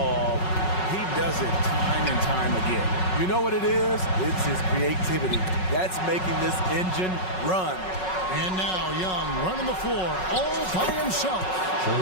He does it time and time again. You know what it is? It's his creativity. That's making this engine run. And now Young running the floor all by himself.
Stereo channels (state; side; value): late; right; 5.4 ms